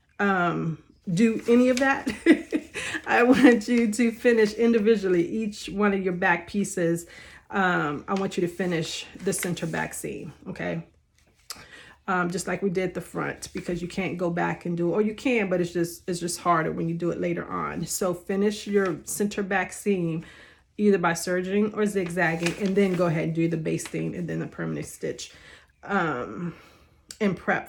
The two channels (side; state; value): both; identical; correlation 1.00